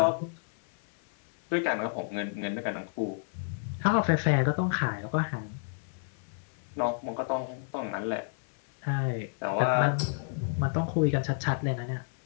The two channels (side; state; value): right; silent; 58 dB below the other